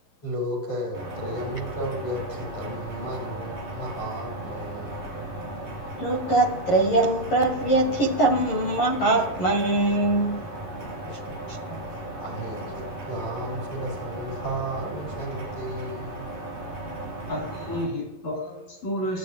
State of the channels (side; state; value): right; late; 11 ms